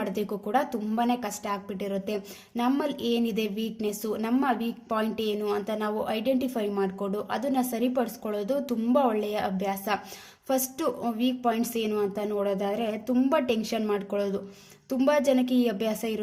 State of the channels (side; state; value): both; identical; correlation 1.00